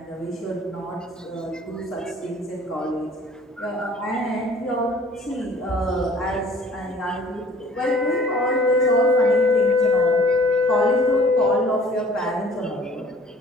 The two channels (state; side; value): normal; both; correlation 0.52